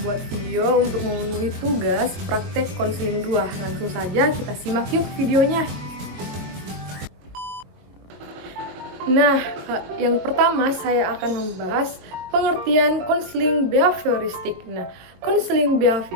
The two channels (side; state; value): left; late; 22 ms